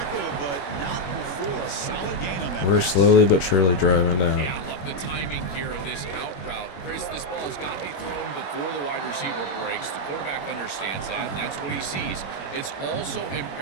but not before a solid gain on that. We're pass. slowly but surely driving down. Yeah, I love the timing here of this out route. Chris, this ball has got to be thrown before the wide receiver breaks. The quarterback understands that, and that's what he sees. It's also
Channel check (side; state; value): right; late; 21 ms